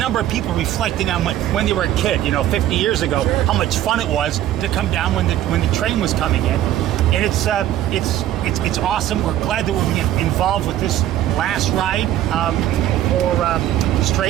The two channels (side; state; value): left; quieter; 12.6 dB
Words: of people reflecting on when they were a kid, 50 years ago, how much fun it was to come down when the train was coming in. And it's awesome. We're glad that we're being involved with this last ride for